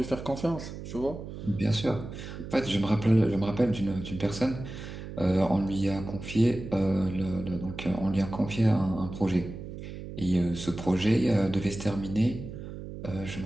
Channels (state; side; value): noise; right; hum, 10 dB below the sound